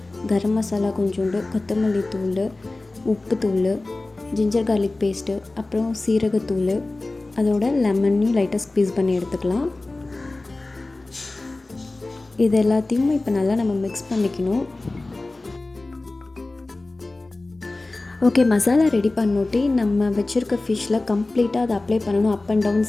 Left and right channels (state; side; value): quieter; right; 3.1 dB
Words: கரம் மசாலா கொஞ்சோண்டு, கொத்தமல்லி தூள், உப்புத்தூள், ஜிஞ்சர் கார்லிக் பேஸ்ட்டு, அப்புறம் சீரகத்தூள், அதோட லெமனையும் லைட்டாக ஸ்க்வீஸ் பண்ணி எடுத்துக்கலாம். இது எல்லாத்தையும் இப்போ நல்லா நம்ம மிக்ஸ் பண்ணிக்கணும். ஓகே, மசாலா ரெடி பண்ணோட்டி நம்ம வச்சுருக்க ஃபிஷ்ஷில் கம்ப்ளீட்டாக அதை அப்ளை பண்ணணும். Up and down,